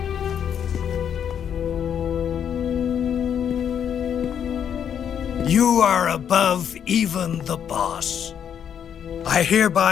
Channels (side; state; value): right; quieter; 8.6 dB